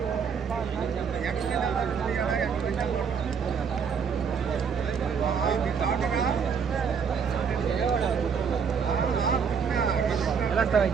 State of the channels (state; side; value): quieter; left; 6.5 dB